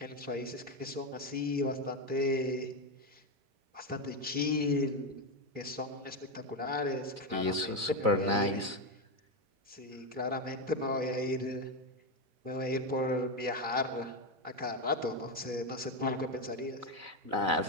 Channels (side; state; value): left; late; 4.0 ms